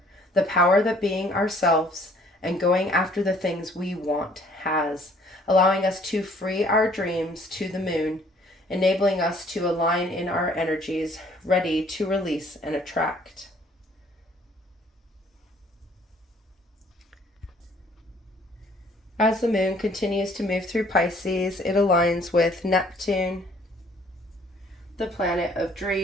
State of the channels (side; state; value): both; normal; correlation 0.59